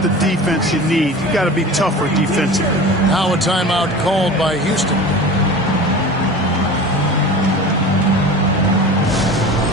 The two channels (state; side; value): normal; both; correlation 0.35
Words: the defense you need. You got to be tougher defensively. Now a timeout called by Houston.